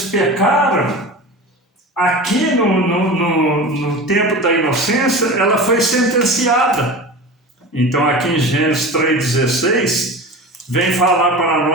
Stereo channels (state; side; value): normal; both; correlation 0.32